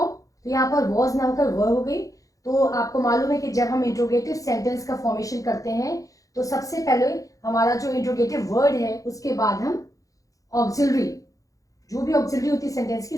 तो यहाँ पर वॉज ना होकर वर हो गई। तो आपको मालूम है कि जब हम इंट्रोगेटिव सेंटेंस का फॉर्मेशन करते हैं तो सबसे पहले हमारा जो इंट्रोगेटिव वर्ड है उसके बाद हम ऑक्सिलरी, जो भी ऑक्सिलरी होती है सेंटेंस की,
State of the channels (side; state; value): right; late; 0.17 ms